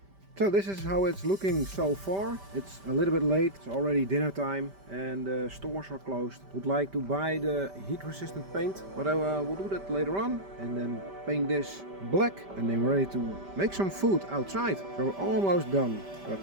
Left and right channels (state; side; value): late; left; 5.1 ms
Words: So this is how it's looking so far. It's a little bit late, it's already dinner time and the stores are closed. Would like to buy the heat resistant paint, but I will do that later on and then paint this black and then we're ready to make some food outside. So we're almost done,